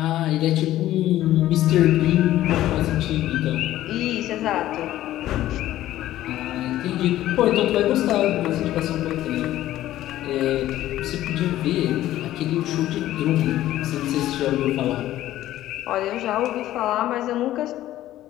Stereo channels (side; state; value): right; quieter; 14.0 dB